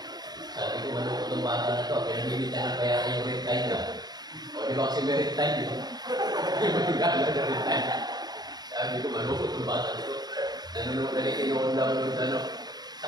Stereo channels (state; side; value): late; left; 0.20 ms